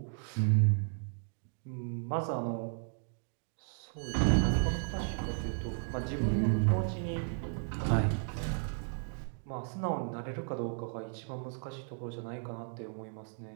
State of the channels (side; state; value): left; silent; 55 dB below the other